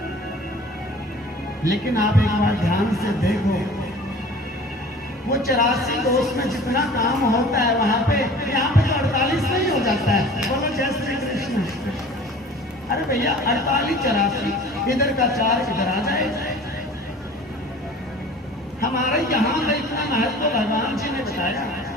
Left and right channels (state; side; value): normal; both; correlation 0.44